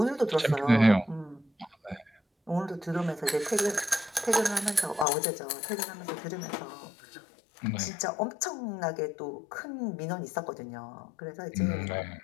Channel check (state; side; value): drops out; right; at 5.1 s